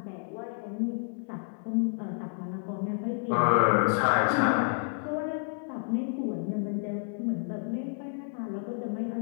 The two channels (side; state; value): right; silent; 58 dB below the other